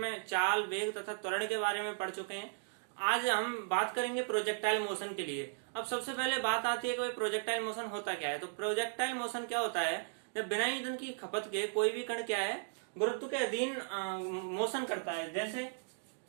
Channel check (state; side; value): silent; left; digital silence